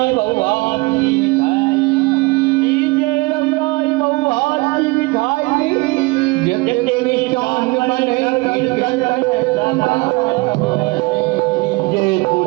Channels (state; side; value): quieter; left; 24.5 dB